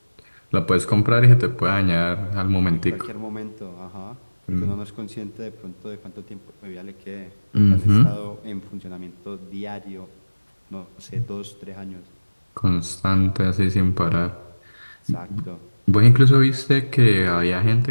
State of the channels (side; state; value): both; inverted; correlation -1.00